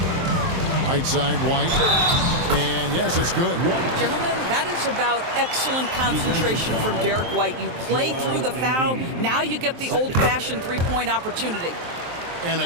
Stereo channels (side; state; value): left; late; 23 ms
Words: Right side, White. And yes, it's good. Gentlemen, that is about excellent concentration from Derek White. You play through the foul. Now you get the old-fashioned three-point opportunity. And